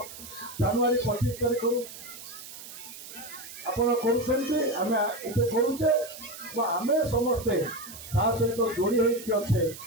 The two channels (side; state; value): right; noise; hiss, 14 dB below the sound